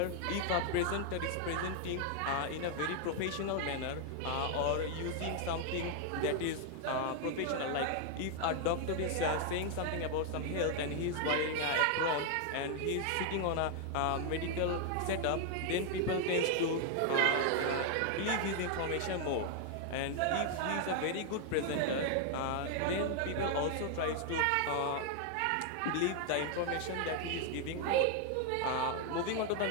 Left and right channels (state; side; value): different; both; correlation 0.00